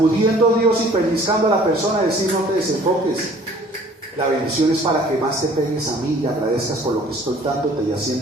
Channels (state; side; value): normal; both; correlation 0.53